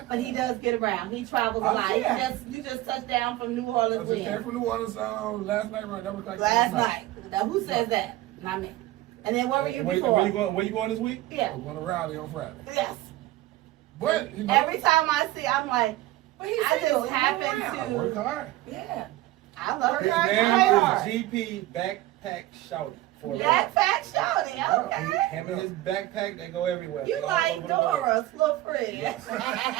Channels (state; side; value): quieter; left; 16.3 dB